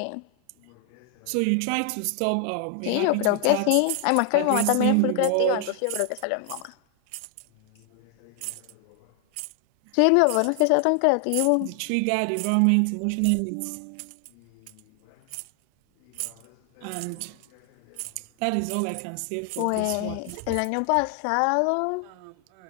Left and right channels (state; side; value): different; both; correlation 0.00